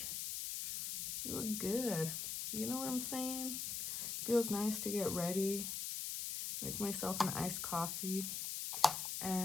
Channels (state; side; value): noise; left; hiss, 3 dB below the sound